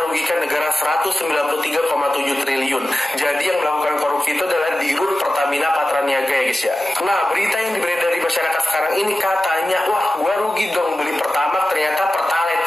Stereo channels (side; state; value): both; normal; correlation 0.94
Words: rugikan negara 193,7 triliun. Jadi yang melakukan korupsi itu adalah Dirut Pertamina Patraniaga ya guys ya. Nah, berita yang beredar di masyarakat sekarang ini katanya, wah gua rugi dong beli Pertamax, ternyata Pertalite,